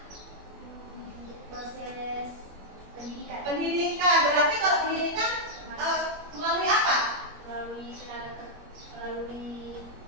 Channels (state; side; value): late; left; 21 ms